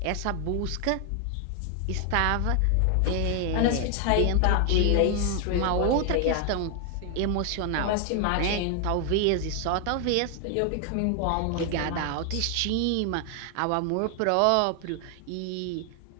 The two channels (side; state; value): both; different; correlation 0.00